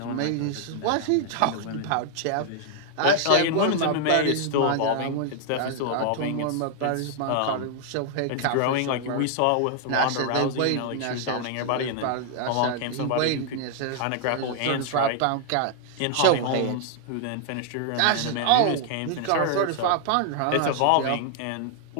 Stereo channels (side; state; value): both; different; correlation 0.00